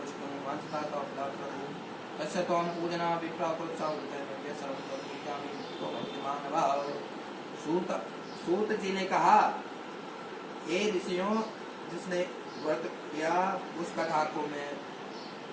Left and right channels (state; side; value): identical; both; correlation 1.00